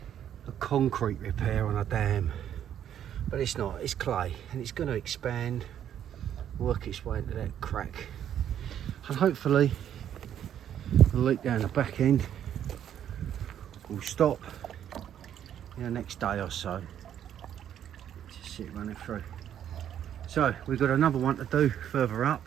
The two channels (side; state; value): left; quieter; 10.0 dB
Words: a concrete repair on a dam, but it's not, it's clay, and it's going to expand, work its way into that crack, and hopefully the leak down the back end will stop in the next day or so. Just see it running through. So we've got another one to do further